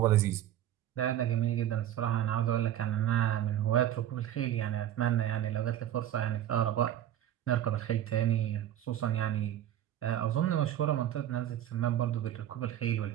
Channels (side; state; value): left; quieter; 11.7 dB